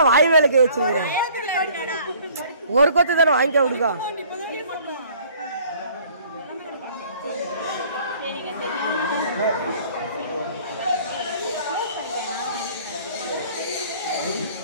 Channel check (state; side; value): inverted; both; correlation -0.54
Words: வாய் வேலை கை வச்சுக்கிறேன். ஒரு கொத்து தானே வாங்கிக்க விடுக்கா.